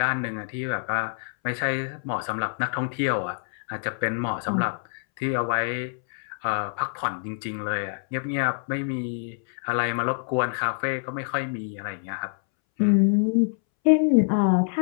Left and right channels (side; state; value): right; silent; 61 dB below the other